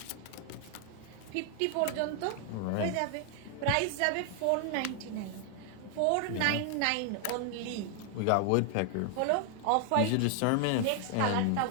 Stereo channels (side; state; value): both; different; correlation 0.00